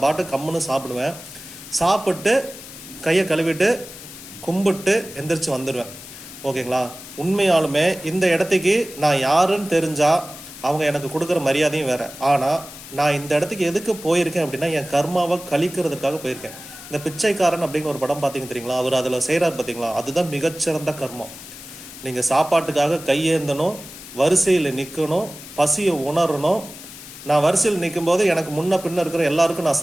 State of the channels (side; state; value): left; noise; hiss, 15 dB below the sound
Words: பாட்டு கம்முன்னு சாப்பிடுவேன். சாப்பிட்டு கையை கழுவிட்டு கும்பிட்டு எந்திரிச்சு வந்துடுவேன். ஓகேங்களா? உண்மையாலுமே இந்த இடத்துக்கு நான் யாருன்னு தெரிஞ்சால் அவங்க எனக்கு கொடுக்குற மரியாதையும் வேறு. ஆனால் நான் இந்த இடத்துக்கு எதுக்கு போயிருக்கேன் அப்படின்னா, என் கர்மாவை கழிக்கிறதுக்காக போயிருக்கேன். இந்த பிச்சைக்காரன் அப்படின்னு ஒரு படம் பார்த்தீங்க தெரியுங்களா? அவர் அதில் செய்கிறார் பார்த்தீங்களா? அதுதான் மிகச்சிறந்த கர்மம். நீங்கள் சாப்பாட்டுக்காக கையேந்தணும், வரிசையில் நிற்கணும், பசியை உணரணும். நான் வரிசையில் நிற்கும் போது எனக்கு முன்ன பின்ன இருக்கிற எல்லாருக்கும் நான்